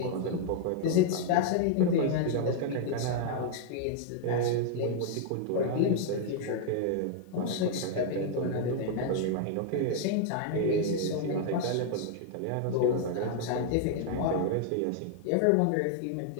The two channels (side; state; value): both; different; correlation -0.01